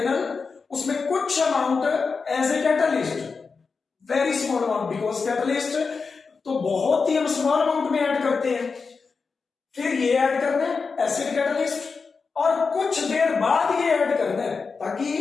उसमें कुछ amount as a catalyst, very small amount, because catalyst तो बहुत ही हम स्मॉल अमाउंट में ऐड करते हैं, फिर ये ऐड करना है एसिड कैटलिस्ट, और कुछ देर बाद ये ऐड करना है ताकि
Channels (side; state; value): right; quieter; 4.9 dB